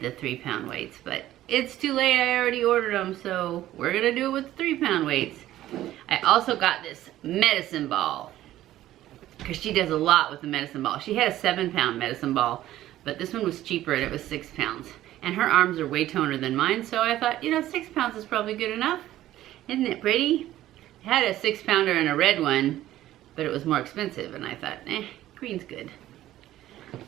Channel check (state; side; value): quieter; left; 14.0 dB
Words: 3-pound weights, but it's too late. I already ordered them, so we're gonna do it with the 3-pound weights. I also got this medicine ball because she does a lot with the medicine ball. She had a 7-pound medicine ball, but this one was cheaper and it was 6 pounds. And her arms are way toner than mine, so I thought, you know, 6 pounds is probably good enough. Isn't it pretty? I had a 6-pounder and a red one, but it was more expensive, and I thought, green's good.